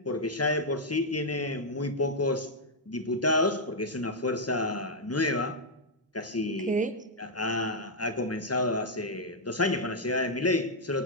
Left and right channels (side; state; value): both; normal; correlation -0.03